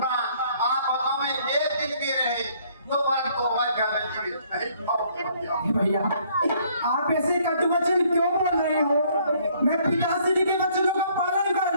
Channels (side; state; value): both; inverted; correlation -0.63